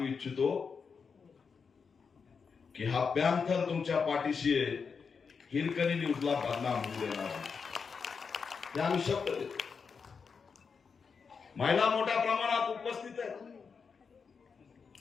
इच्छितो की हा पॅन्थर तुमच्या पाठीशी आहे. हिरकणी न्यूजला बदनाम होऊ देणार नाही. हे आम्ही शब्द देतो. महिला मोठ्या प्रमाणात उपस्थित आहेत.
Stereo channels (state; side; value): quieter; right; 5.6 dB